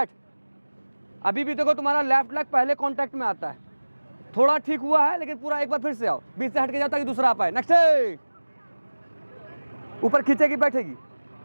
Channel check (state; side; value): inverted; both; correlation -1.00